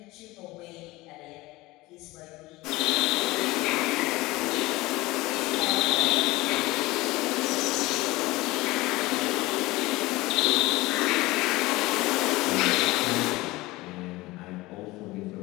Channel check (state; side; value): quieter; right; 20.2 dB